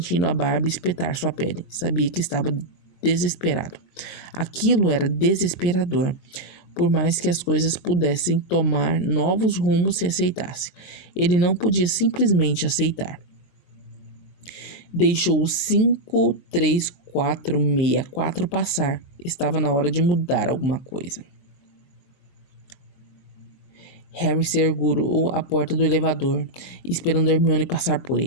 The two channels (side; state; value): right; late; 22 ms